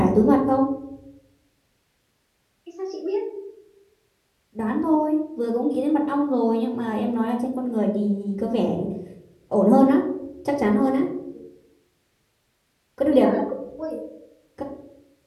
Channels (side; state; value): both; identical; correlation 1.00